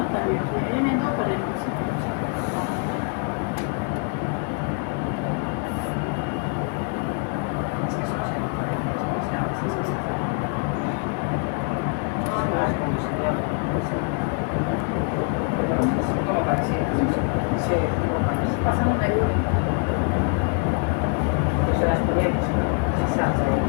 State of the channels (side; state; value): right; quieter; 37.6 dB